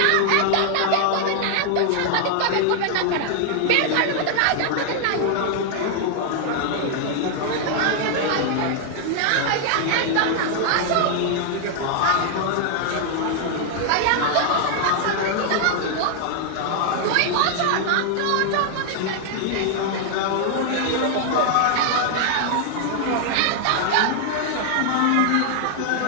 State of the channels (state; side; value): different; both; correlation 0.00